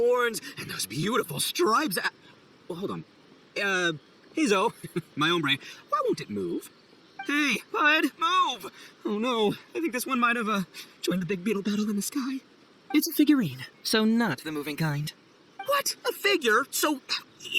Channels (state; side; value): identical; both; correlation 1.00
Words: and those beautiful stripes. Well, hold on. Heizou, my hombre, why won't it move? Hey, bud, move! Oh no, I think this one might have, joined the big beetle battle in the sky. It's a figurine, so not the moving kind. What? A figure? So,